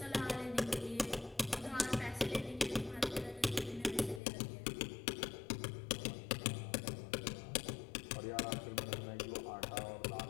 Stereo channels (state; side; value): drops out; right; at 4.2 s